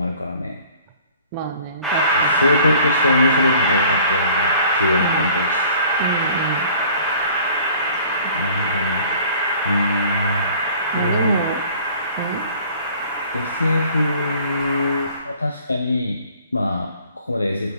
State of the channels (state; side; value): inverted; both; correlation -0.52